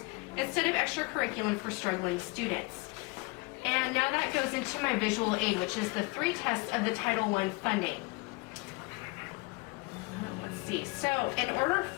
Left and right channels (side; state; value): right; quieter; 26.2 dB